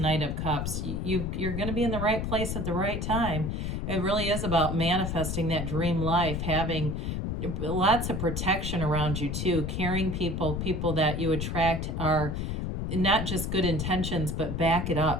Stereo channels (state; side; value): noise; left; rumble, 2 dB below the sound